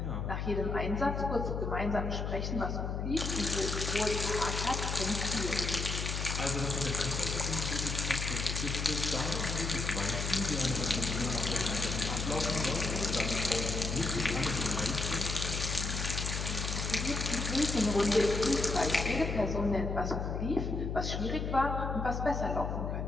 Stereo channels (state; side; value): noise; left; hum, 2 dB below the sound